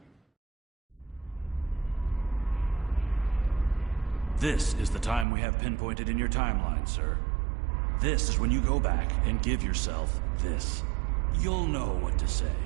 This is the time we have pinpointed in your timeline, sir. This is when you go back and give yourself this. You'll know what to say.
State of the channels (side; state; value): left; drops out; at 5.2 s